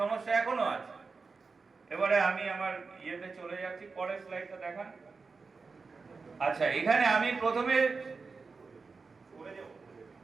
এখনো আছে। এবারে আমি আমার ইয়েতে চলে যাচ্ছি, পরের স্লাইডটা দেখান। আচ্ছা, এখানে আমি প্রথমে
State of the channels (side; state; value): left; quieter; 4.5 dB